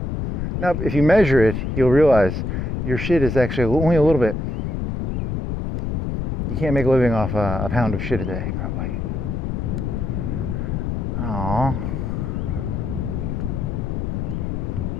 Now, if you measure it, you'll realize your shit is actually only a little bit. You can't make a living off a pound of shit a day, probably. Aww.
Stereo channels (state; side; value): noise; left; rumble, 2 dB below the sound